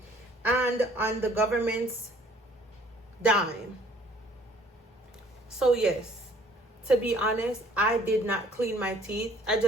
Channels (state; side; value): normal; both; correlation 0.58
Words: and on the government's dime. So yes, to be honest, I did not clean my teeth. I